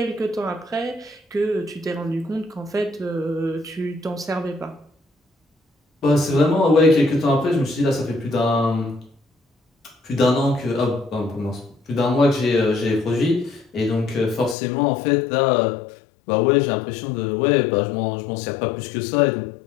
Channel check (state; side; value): drops out; right; at 14.6 s